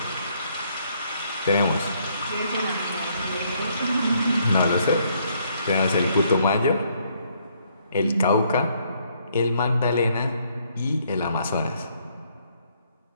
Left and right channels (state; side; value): inverted; both; correlation -0.69